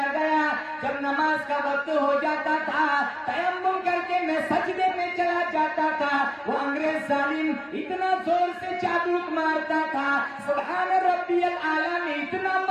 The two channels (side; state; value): both; identical; correlation 1.00